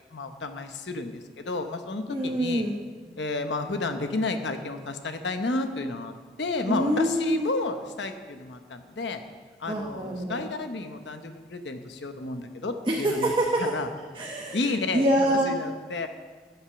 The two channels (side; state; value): both; normal; correlation 0.46